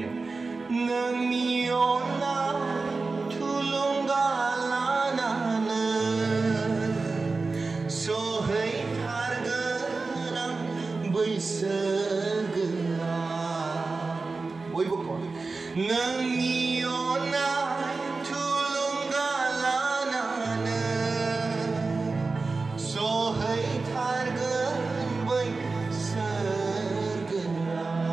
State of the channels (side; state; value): left; quieter; 3.9 dB